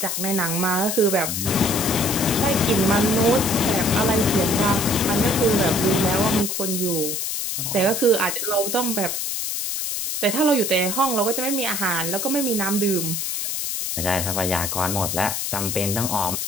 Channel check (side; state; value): left; noise; hiss, 2 dB below the sound